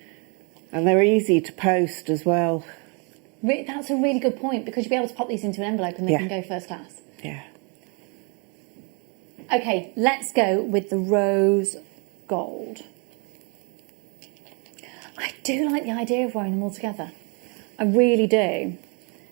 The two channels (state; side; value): quieter; left; 34.5 dB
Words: And they're easy to post as well. That's a really good point, because you'll be able to pop these into an envelope and they can go first class. Yeah. Okay, let's go with the rose gold. I do like the idea of wearing them all together. I really do.